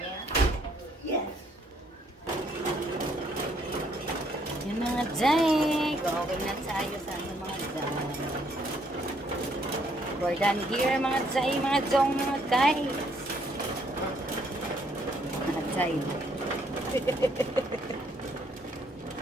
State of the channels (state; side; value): normal; both; correlation 0.68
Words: Yes. Yung mga Jay. Going na tayo sa mga Jay. We're done here, mga Jay, mga Jong, mga guys. Mga Jay.